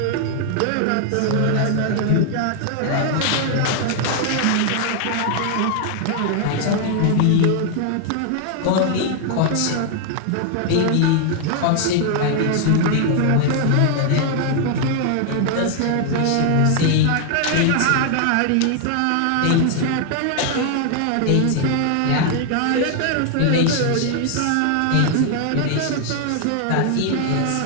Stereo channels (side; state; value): both; different; correlation 0.00